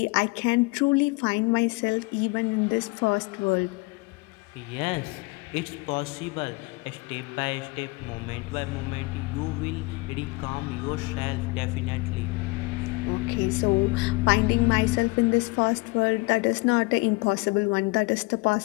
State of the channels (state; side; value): quieter; right; 25.9 dB